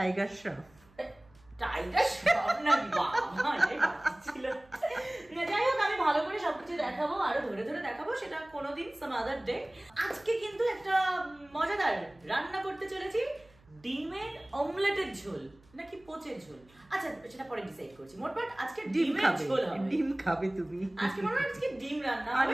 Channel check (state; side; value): noise; right; hum, 29 dB below the sound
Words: শ্রফ। টাইগার শ্রফ না ছিল। যাই হোক, আমি ভালো করে সবকিছু দেখাবো, আরো ধরে ধরে দেখাবো, সেটা কোনোদিন সাম আদার ডে। আজকে কিন্তু একটা মজাদার রান্না করতে চলেছি, ডিমের অমলেটের ঝোল নাকি পোচের ঝোল, আচ্ছা সেটা পরে ডিসাইড করছি। মোটমাট আজকে ডিমের ঝোল হবে। ডিম খাবে তুমি আজকে? মনে হয় আজকে ডিম রান্না হবে।